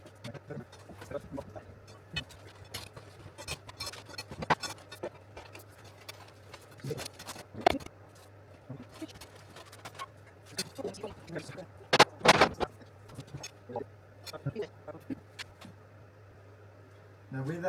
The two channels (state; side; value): identical; both; correlation 1.00